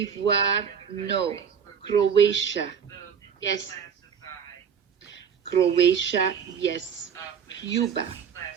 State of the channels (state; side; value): quieter; left; 7.2 dB